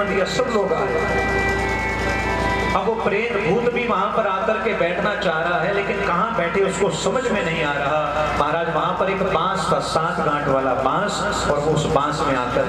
दिया, सब लोग आए। अब वो प्रेत भूत भी वहां पर आकर के बैठना चाह रहा है, लेकिन कहां बैठे उसको समझ में नहीं आ रहा। महाराज वहां पर एक बांस था, 7 गांठ वाला बांस, और वो उस बांस में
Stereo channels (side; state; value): both; identical; correlation 1.00